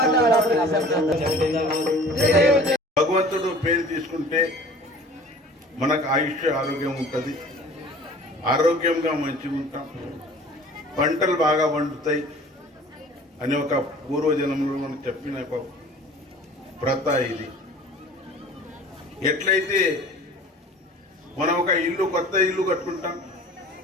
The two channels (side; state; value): both; normal; correlation 0.45